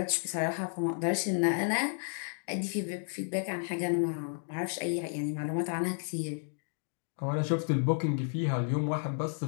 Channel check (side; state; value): right; silent; 56 dB below the other